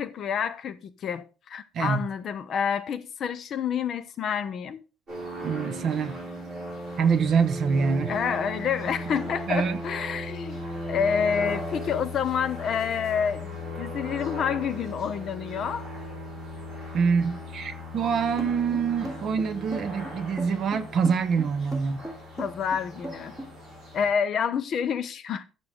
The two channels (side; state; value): both; normal; correlation 0.68